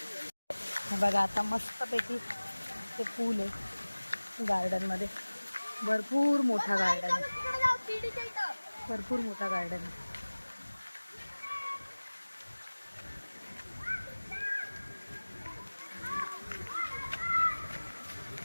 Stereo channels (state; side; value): inverted; both; correlation -1.00